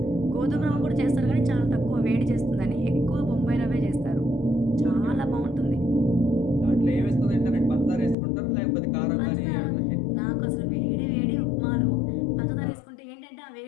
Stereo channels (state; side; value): drops out; right; at 8.2 s